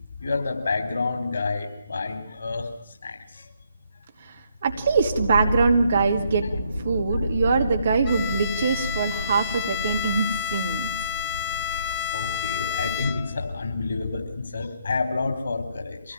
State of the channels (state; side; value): inverted; both; correlation -0.71